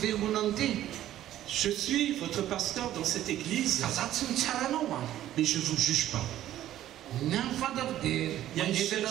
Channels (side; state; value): left; quieter; 12.9 dB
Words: fiangonana ity. Je suis votre pasteur dans cette église, Fa za tsy mitsara anao a. mais je ne vous juge pas. Ny amin'ny fantako dia mangetana